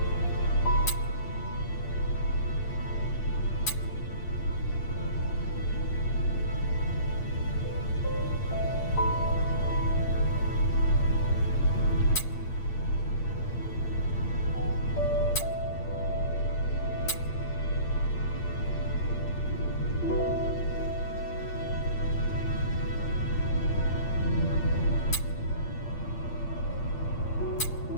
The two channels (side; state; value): right; late; 8.7 ms